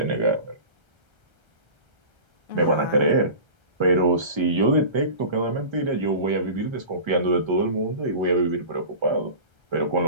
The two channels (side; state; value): left; late; 1.3 ms